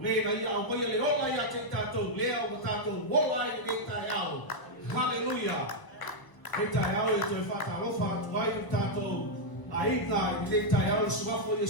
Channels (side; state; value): right; late; 1.0 ms